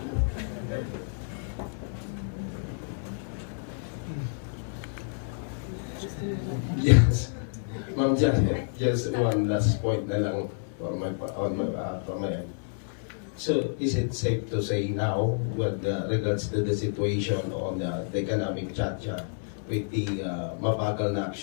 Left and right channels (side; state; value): right; silent; 59 dB below the other